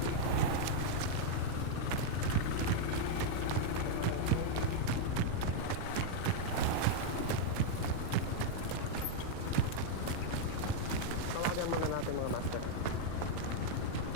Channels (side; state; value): both; different; correlation -0.01